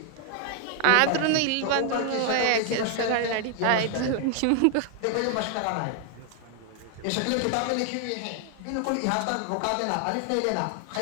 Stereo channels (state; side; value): different; both; correlation 0.00